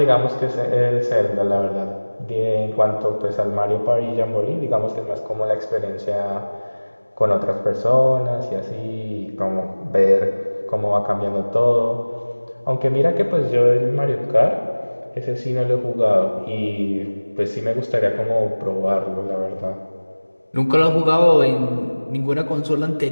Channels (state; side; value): inverted; both; correlation -1.00